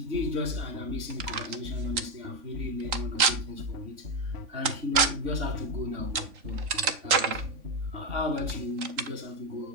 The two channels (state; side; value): late; left; 3.5 ms